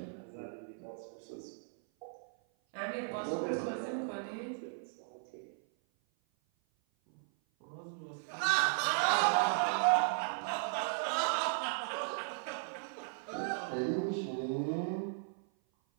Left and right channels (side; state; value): left; silent; 54 dB below the other